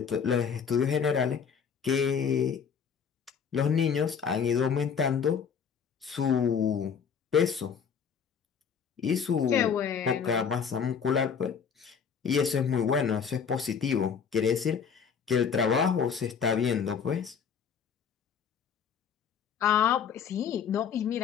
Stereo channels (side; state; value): right; quieter; 6.9 dB